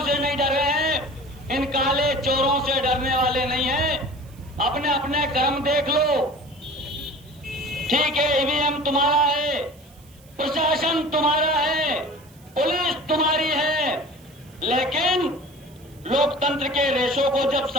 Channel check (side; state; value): right; noise; hiss, 27 dB below the sound